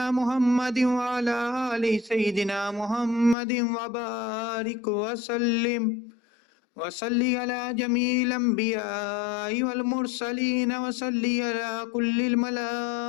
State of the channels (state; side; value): drops out; right; at 3.4 s